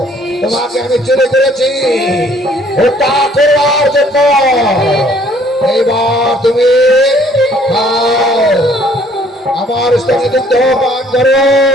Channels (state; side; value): normal; both; correlation 0.60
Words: তোমাকে আমি চলে করেছি হত্যা করবার জন্য। এইবার তুমি খাও, আমার স্থানে দুগ্ধ পান করো।